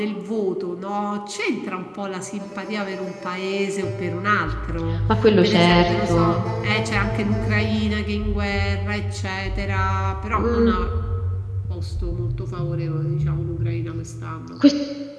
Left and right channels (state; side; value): identical; both; correlation 1.00